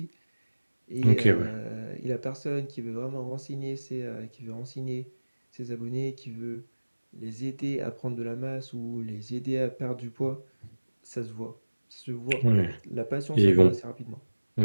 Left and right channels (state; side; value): inverted; both; correlation -1.00